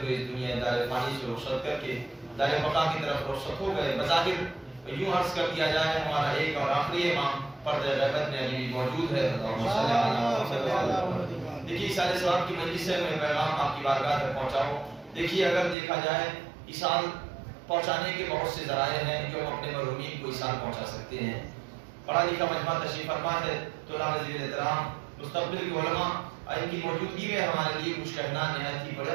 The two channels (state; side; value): drops out; left; at 15.8 s